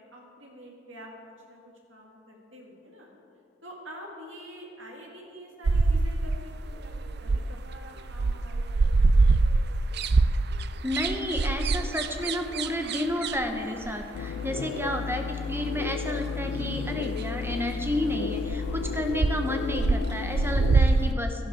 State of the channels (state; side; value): normal; both; correlation 0.81